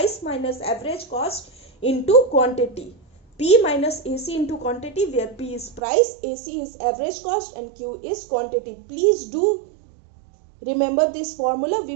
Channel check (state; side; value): drops out; left; at 5.8 s